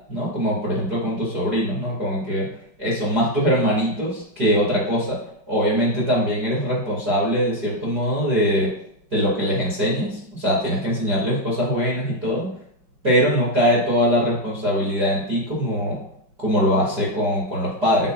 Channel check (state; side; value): late; left; 5.3 ms